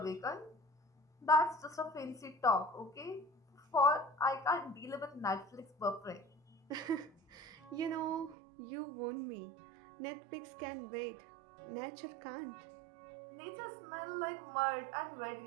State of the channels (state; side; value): drops out; left; at 8.3 s